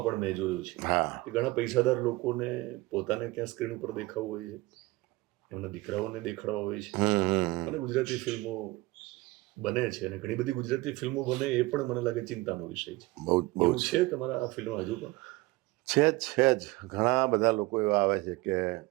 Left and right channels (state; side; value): quieter; left; 21.0 dB